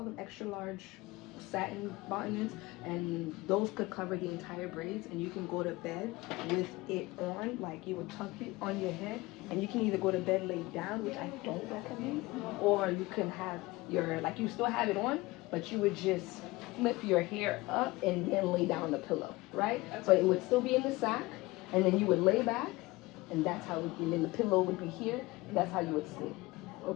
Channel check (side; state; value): right; quieter; 21.1 dB